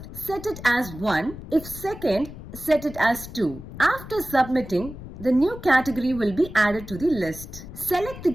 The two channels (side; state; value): left; noise; rumble, 13 dB below the sound